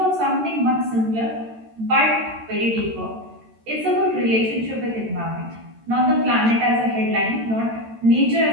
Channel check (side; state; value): left; late; 13 ms